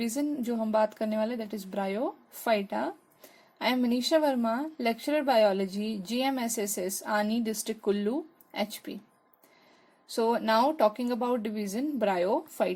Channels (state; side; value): identical; both; correlation 1.00